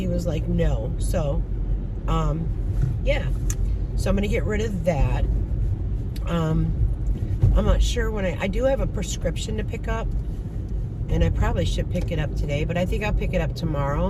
was like, no. So, yeah. So I'm going to get rid of that. I'm not sure when I do have a prescription to pick up, and I probably should pick it up today, but I think I'll pick it up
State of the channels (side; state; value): both; identical; correlation 1.00